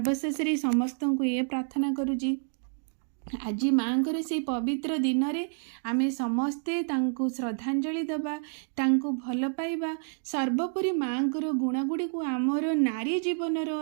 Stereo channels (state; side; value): silent; left; 58 dB below the other